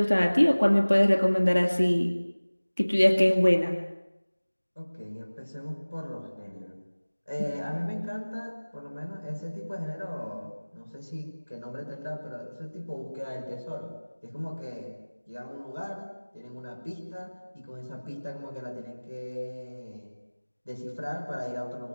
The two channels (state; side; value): inverted; both; correlation -1.00